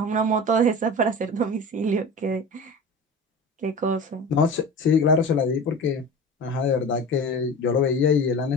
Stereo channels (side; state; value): both; normal; correlation 0.33